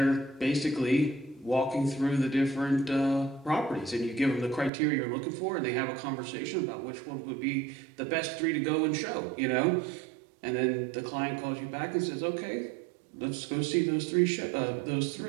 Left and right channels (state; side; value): drops out; left; at 4.7 s